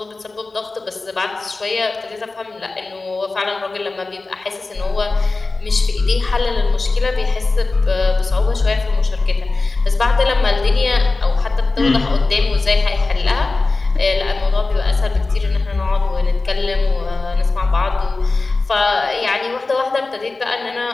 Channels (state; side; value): quieter; right; 3.5 dB